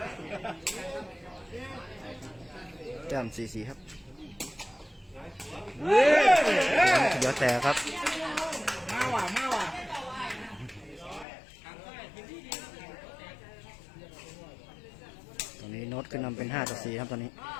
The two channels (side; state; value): right; drops out; at 11.2 s